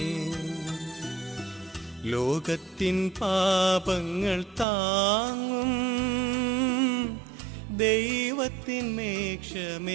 ലോകത്തിൻ പാപങ്ങൾ താങ്ങും ദൈവത്തിൻ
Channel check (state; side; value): drops out; left; at 4.7 s